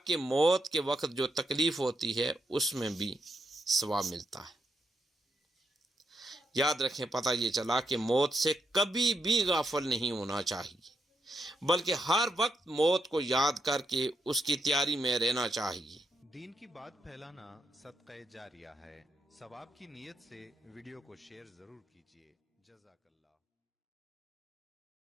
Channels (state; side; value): normal; both; correlation 0.80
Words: کہ موت کے وقت جو تکلیف ہوتی ہے اس میں بھی ثواب ملتا ہے۔ یاد رکھیں، پتہ یہ چلا کہ موت سے کبھی بھی غافل نہیں ہونا چاہیے، بلکہ ہر وقت موت کو یاد کر کے اس کی تیاری میں رہنا چاہیے۔ دین کی بات پھیلانا صدقہ جاریہ ہے، ثواب کی نیت سے ویڈیو کو شیئر ضرور کیجیے۔ جزاک اللہ۔